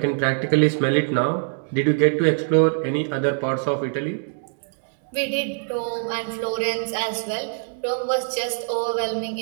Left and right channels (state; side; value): silent; left; digital silence